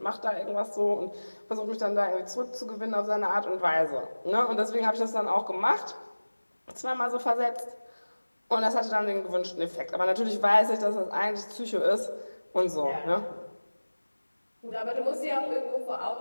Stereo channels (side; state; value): both; inverted; correlation -1.00